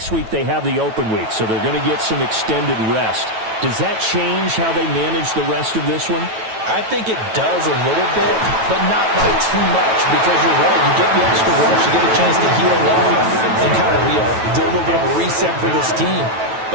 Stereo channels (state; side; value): late; left; 9.1 ms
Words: week they have the open week, so they're going to get some extended rest. Does that change how they manage the rest of this one? I think it does a little bit, but not by too much, because you're right. You get the extra rest, you get a chance to heal off and kind of do a little bit of a reset for this team.